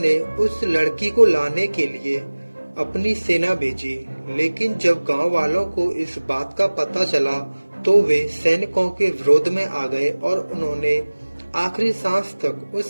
उस लड़की को लाने के लिए अपनी सेना भेजी, लेकिन जब गांव वालों को इस बात का पता चला तो वे सैनिकों के विरोध में आ गए और उन्होंने आखिरी सांस तक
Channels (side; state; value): both; inverted; correlation -1.00